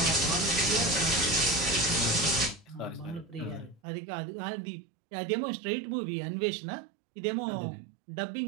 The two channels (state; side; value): drops out; left; at 3.8 s